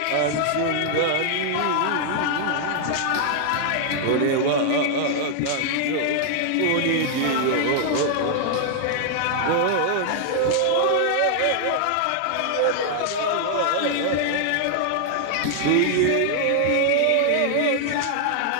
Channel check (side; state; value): both; different; correlation -0.01